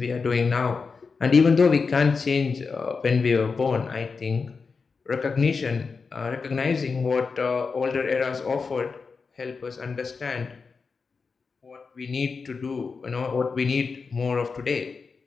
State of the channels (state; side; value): quieter; right; 4.9 dB